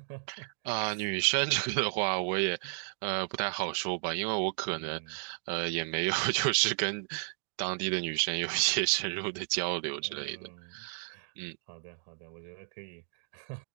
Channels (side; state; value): left; silent; digital silence